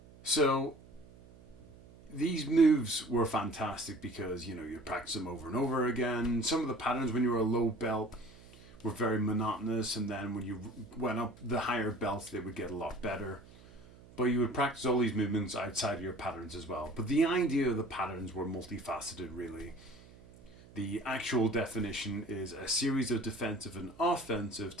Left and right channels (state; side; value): noise; right; hum, 22 dB below the sound